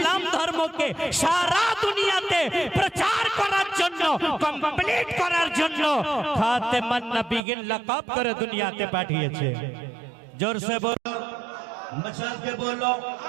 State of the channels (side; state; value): left; drops out; at 7.5 s